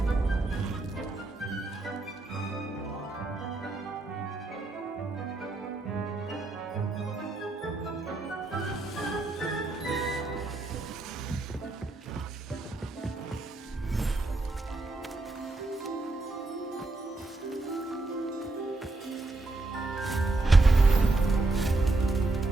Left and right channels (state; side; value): quieter; left; 3.1 dB